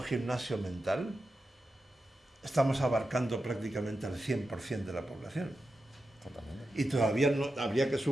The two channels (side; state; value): both; normal; correlation 0.90